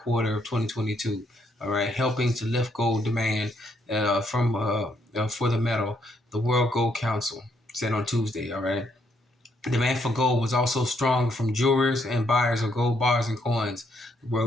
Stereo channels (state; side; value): normal; both; correlation 0.73